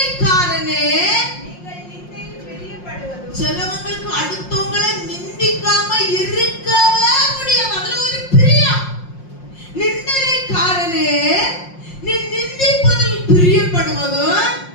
சிலவங்களுக்கு அடுத்தவங்களை நிந்திக்காம இருக்கவே முடியாது. அதுல ஒரு பிரியம். நிந்தனைக்காரனே, நீ நிந்திப்பதில் பிரியப்படுவதும்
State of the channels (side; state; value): right; late; 5.6 ms